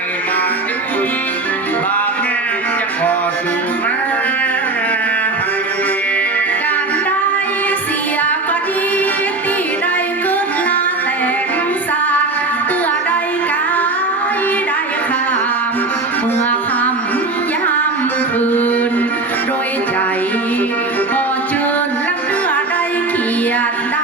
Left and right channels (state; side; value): quieter; left; 3.3 dB